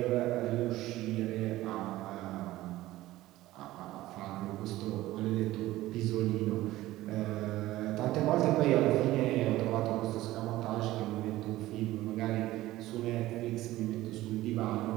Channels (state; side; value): quieter; left; 16.4 dB